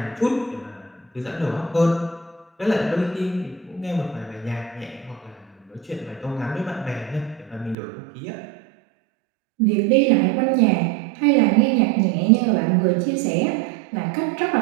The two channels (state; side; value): drops out; left; at 7.8 s